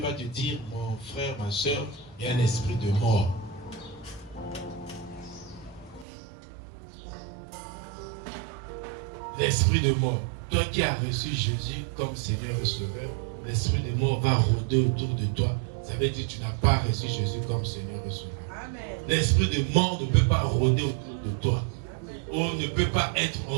va te dire, mon frère, ma soeur, il y a un esprit de mort. L'esprit de mort. Toi qui as reçu Jésus comme Seigneur et Sauveur, l'esprit de mort va rôder autour de toi ça veut dire que tu n'as pas reçu Jésus comme Seigneur et Sauveur. L'esprit de mort ne peut pas rôder autour de toi. Ou ne peut pas être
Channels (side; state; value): left; drops out; at 6.1 s